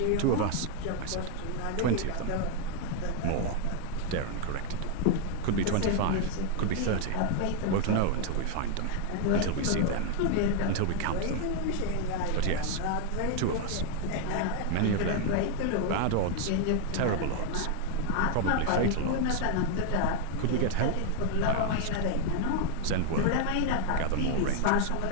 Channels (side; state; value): both; different; correlation 0.00